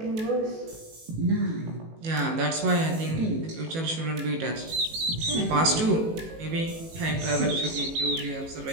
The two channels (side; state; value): left; late; 18 ms